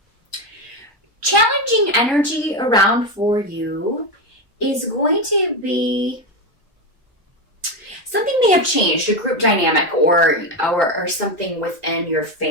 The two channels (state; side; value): normal; both; correlation 0.13